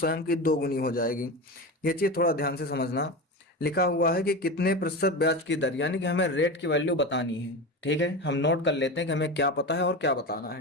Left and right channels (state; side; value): normal; both; correlation 0.24